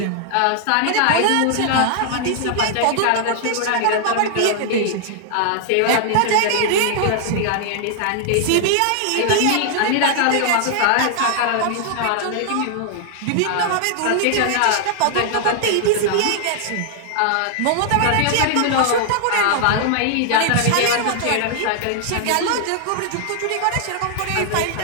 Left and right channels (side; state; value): both; different; correlation -0.01